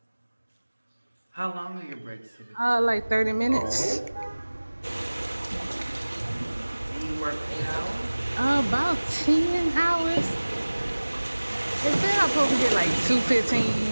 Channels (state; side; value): inverted; both; correlation -1.00